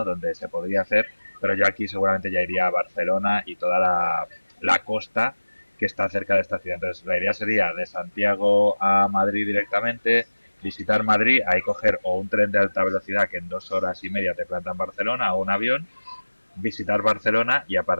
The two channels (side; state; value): both; inverted; correlation -1.00